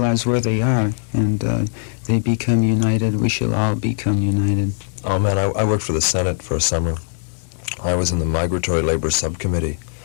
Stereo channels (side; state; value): right; silent; digital silence